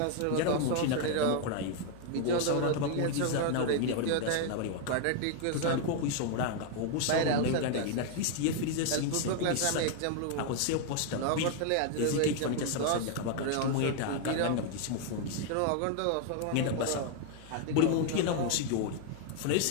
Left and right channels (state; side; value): different; both; correlation 0.00